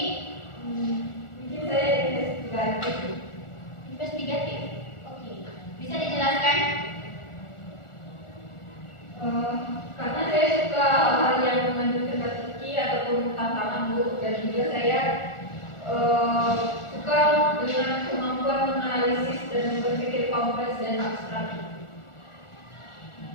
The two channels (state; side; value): late; right; 1.4 ms